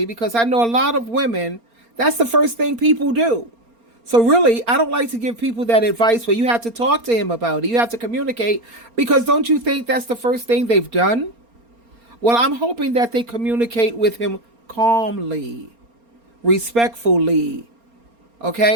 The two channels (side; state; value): left; late; 4.3 ms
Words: because I know a lot of women, that's the first thing people do. So really, I don't like to give people that advice where you have to talk to him about it. You have to communicate, because don't you think that's the first thing they've done? Well, I'm hoping that they communicate with him calmly, respectfully,